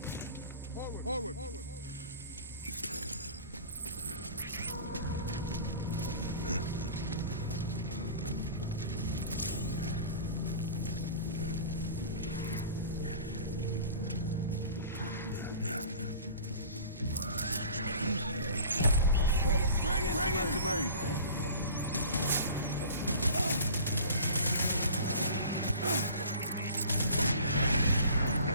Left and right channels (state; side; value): inverted; both; correlation -0.42